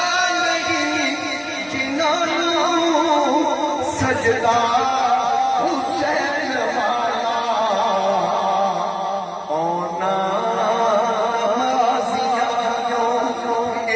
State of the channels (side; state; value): both; identical; correlation 1.00